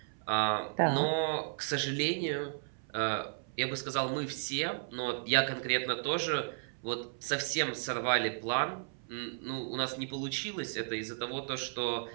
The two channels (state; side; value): silent; left; 55 dB below the other